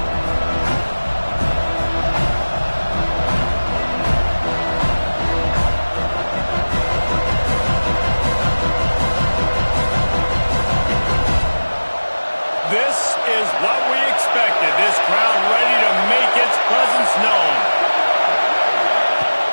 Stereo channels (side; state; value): both; inverted; correlation -1.00